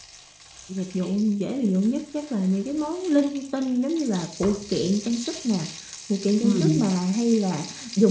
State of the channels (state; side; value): identical; both; correlation 1.00